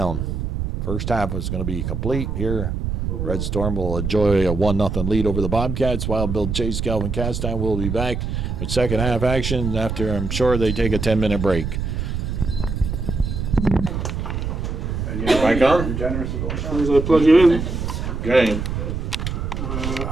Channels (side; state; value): right; noise; rumble, 3 dB below the sound